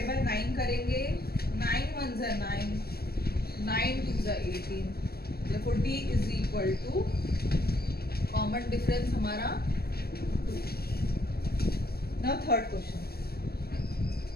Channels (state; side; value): late; right; 0.45 ms